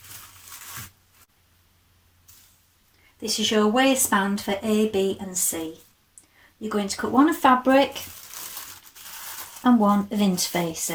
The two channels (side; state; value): both; identical; correlation 1.00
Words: This is your waistband for A, B and C. You're going to cut one of fabric and one of